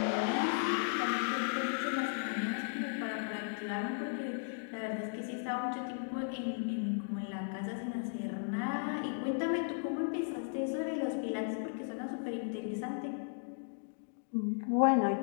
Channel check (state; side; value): silent; right; digital silence